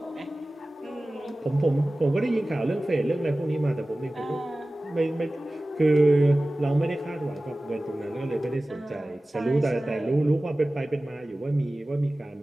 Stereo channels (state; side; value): normal; both; correlation 0.97